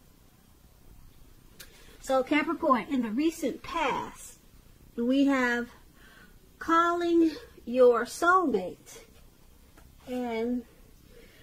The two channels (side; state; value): both; identical; correlation 1.00